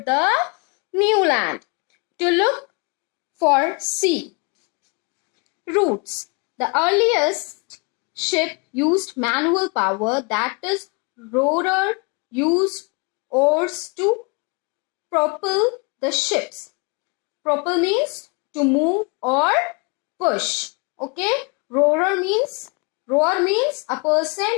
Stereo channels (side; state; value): right; quieter; 33.0 dB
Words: the new land to look for sea routes. The earliest ship used manual power, that is, rower used oars to propel the ships. Propel means to move or push. Okay, rower means a person